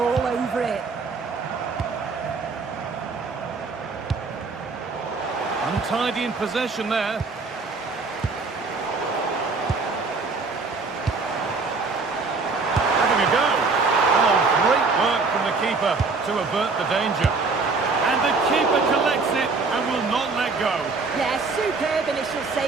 over it. Untidy in possession there. Having a go. Oh, great work from the keeper to avert the danger. And the keeper collects it and will not let go. Yeah, superb initial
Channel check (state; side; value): quieter; left; 4.1 dB